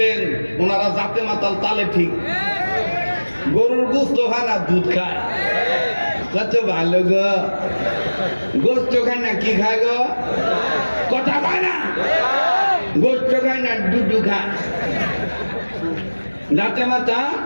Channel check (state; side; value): inverted; both; correlation -1.00